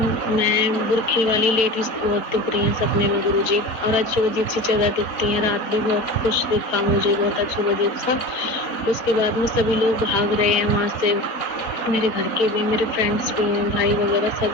मैं बुरखे वाली लेडीज बहुत दिख रही हैं सपने में गुरुजी, और अजीब अजीब सी जगह दिखती हैं। रात भी बहुत कुछ दिखा मुझे, बहुत अजीब अजीब सा। उसके बाद में सभी लोग भाग रहे हैं वहाँ से, मेरे घर के भी, मेरे फ्रेंड्स भी हैं, भाई वगैरह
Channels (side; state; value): right; late; 4.1 ms